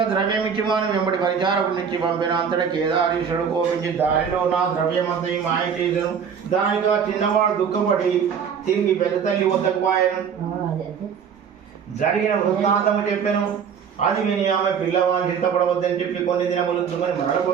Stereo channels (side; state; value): left; quieter; 7.1 dB